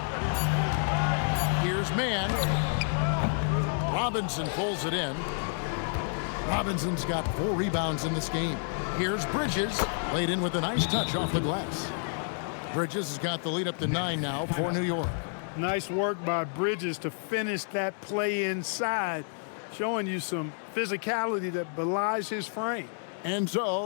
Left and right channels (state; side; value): silent; right; 58 dB below the other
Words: Here's Mann. Robinson pulls it in. Robinson's got 4 rebounds in this game. Here's Bridges. Laid in with a nice touch off the glass. Bridges has got the lead up to 9 now for New York. Nice work by Bridges to finish that play inside, showing you some physicality that belies his frame. And